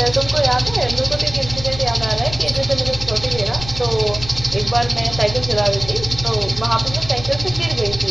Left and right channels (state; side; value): noise; left; rumble, 12 dB below the sound